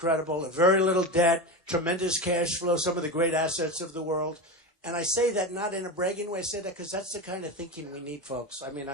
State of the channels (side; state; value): both; normal; correlation 0.21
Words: Very little debt, tremendous cash flow, some of the great assets of the world. And I say that not in a bragging way. I say that because that's the kind of thinking we need, folks. I mean,